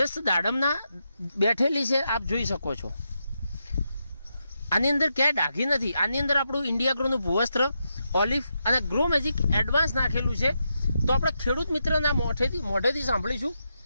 દાડમના બેઠેલી છે, આપ જોઈ શકો છો. આની અંદર ક્યાંય ડાઘી નથી. આની અંદર આપણું ઇન્ડિયા ગ્રોનું ભૂવસ્ત્ર, ઓલિવ અને ગ્રો મેજિક એડવાન્સ નાખેલું છે. તો આપણે ખેડૂત મિત્રના મોઢેથી સાંભળીશું.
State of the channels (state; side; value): inverted; both; correlation -0.85